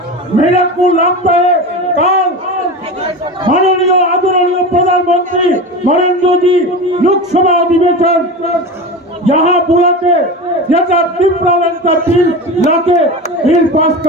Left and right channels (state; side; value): normal; both; correlation 0.27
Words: मेरे को लगता है कल माननीय आदरणीय प्रधानमंत्री नरेंद्र जी लोकसभा अधिवेशन यहाँ बुला के तीव्र लैंड का बिल लाके बिल पास